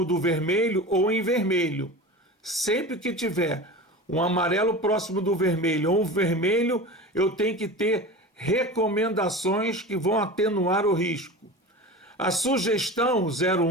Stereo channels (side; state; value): both; normal; correlation 0.32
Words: do vermelho, ou em vermelho. Sempre que tiver um amarelo próximo do vermelho ou um vermelho, eu tenho que ter recomendações que vão atenuar o risco. A sugestão